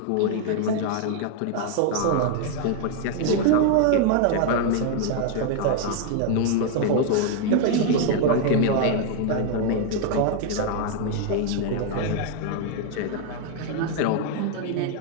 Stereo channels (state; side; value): different; both; correlation 0.00